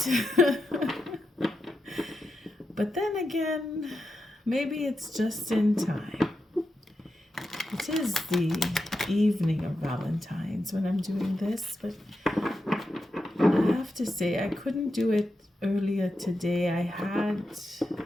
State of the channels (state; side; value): normal; both; correlation 0.87